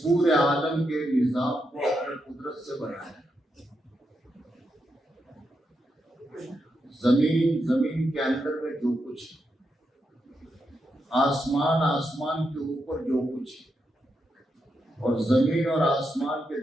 پورے عالم کے نظام کو اپنی قدرت سے بنایا. زمین کے اندر میں جو کچھ ہے، آسمان کے اوپر جو کچھ ہے، اور زمین اور آسمان کے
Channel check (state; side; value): normal; both; correlation 0.84